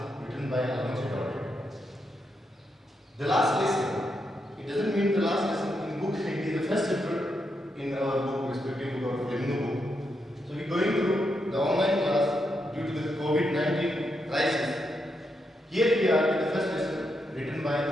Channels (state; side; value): normal; both; correlation 0.82